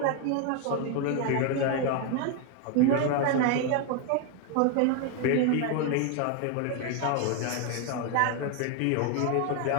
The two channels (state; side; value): different; both; correlation 0.01